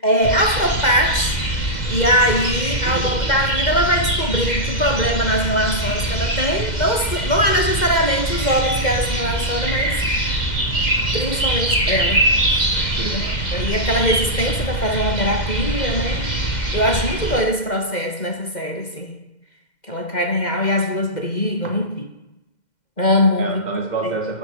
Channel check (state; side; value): late; right; 2.1 ms